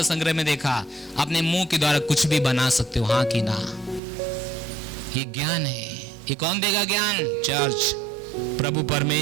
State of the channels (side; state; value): left; drops out; at 4.0 s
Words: संग्रह में देखा अपने मुंह के द्वारा कुछ भी बना सकते हो, हाँ कि ना। ये ज्ञान है। ये कौन देगा ज्ञान? चर्च, प्रभु